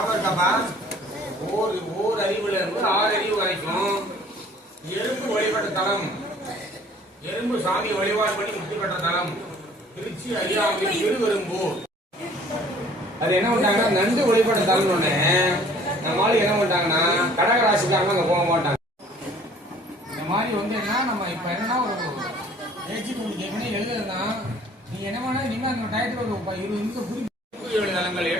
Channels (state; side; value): normal; both; correlation 0.53